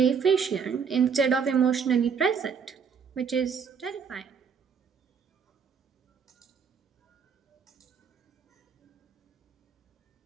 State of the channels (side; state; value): left; quieter; 6.4 dB